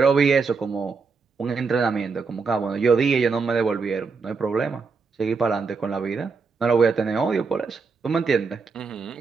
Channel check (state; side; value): quieter; left; 4.8 dB